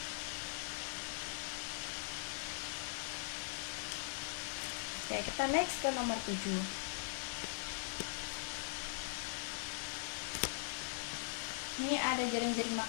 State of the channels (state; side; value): silent; right; digital silence